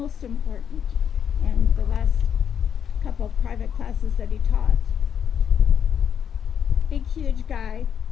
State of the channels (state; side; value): quieter; right; 8.3 dB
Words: important. And the last couple of private classes that he taught, big, huge guy,